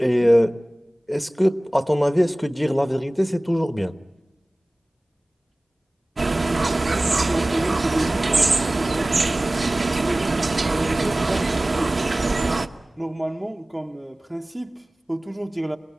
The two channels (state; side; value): normal; both; correlation 0.98